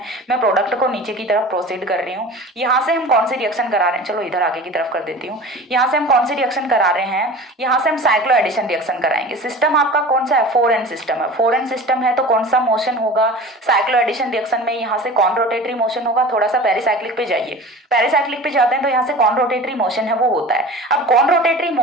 मैं प्रोडक्ट को नीचे की तरफ प्रोसीड कर रही हूँ, यहाँ से हम कौन सी रिएक्शन करा रहे हैं, चलो इधर आगे की तरफ कर देती हूँ। यहाँ से हम कौन सी रिएक्शन करा रहे हैं, यहाँ से हम साइक्लो एडिशन रिएक्शन कराएंगे। सिस्टम आपका कौन सा है, 4n सिस्टम है। 4n सिस्टम है तो कौन सा मोशन होगा, साइक्लो एडिशन रिएक्शन में यहाँ से कौन रोटेटरी मोशन होगा। थोड़ा सा पेरिसाइक्लिक पे जाइए, पेरिसाइक्लिक पे जाते हैं तो यहाँ से कौन रोटेटरी मोशन है वो होता है। अब कौन रोटेटरी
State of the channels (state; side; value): normal; both; correlation 0.37